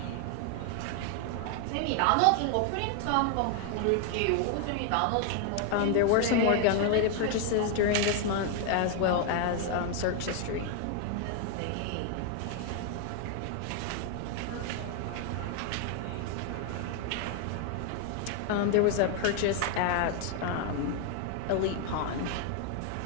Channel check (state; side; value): different; both; correlation 0.00